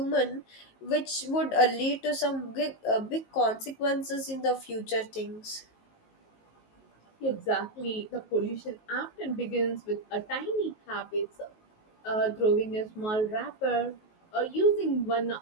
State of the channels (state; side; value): late; right; 19 ms